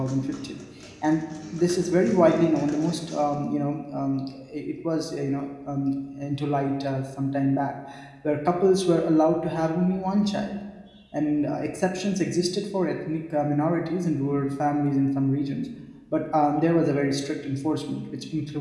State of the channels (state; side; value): identical; both; correlation 1.00